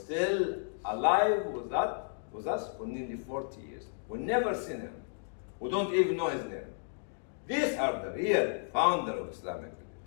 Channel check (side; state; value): right; silent; digital silence